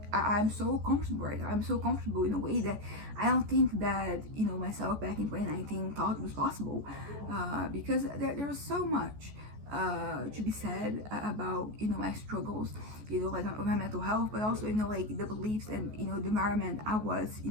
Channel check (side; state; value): left; late; 14 ms